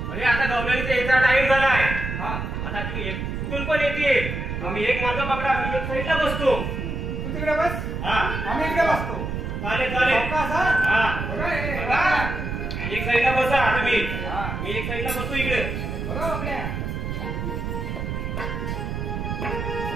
अरे आता गवळणीचा यायचा टाइम झालाय. हा आता तुम्ही कुठून पण येतील. आम्ही एक माझा पकडा मी एक साईडला बसतो. तू तिकडे बस हा आम्ही इकडे बसतो चालेल चालेल. अवकाश, हा? हा बघा, हे, बघा. एक साईडला बसा तुम्ही. हा. मी एक साईडला बसतो इकडे. बघा आपल्या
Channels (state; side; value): noise; right; rumble, 4 dB below the sound